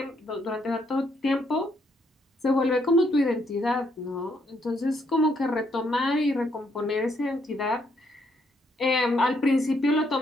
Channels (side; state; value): both; normal; correlation 0.73